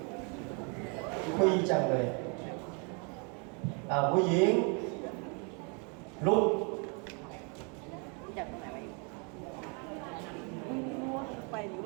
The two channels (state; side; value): quieter; left; 35.0 dB